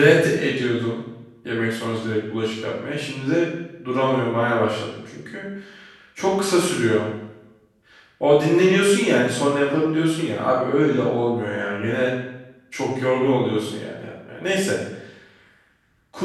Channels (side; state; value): both; identical; correlation 1.00